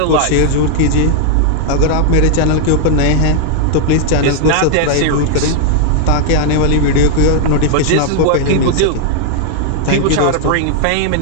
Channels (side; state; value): both; different; correlation 0.00